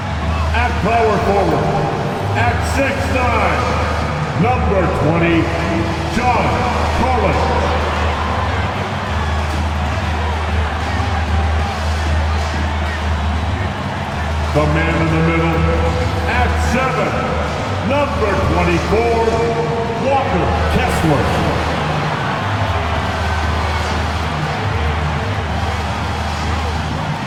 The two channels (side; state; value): both; identical; correlation 1.00